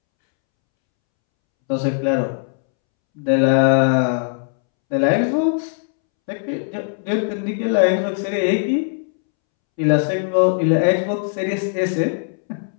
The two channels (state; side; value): silent; right; 66 dB below the other